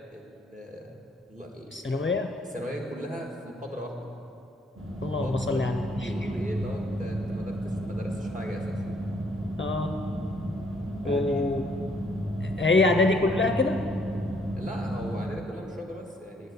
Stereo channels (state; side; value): normal; both; correlation 0.67